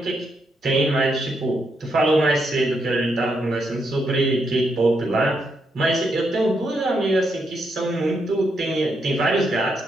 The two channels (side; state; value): both; normal; correlation 0.80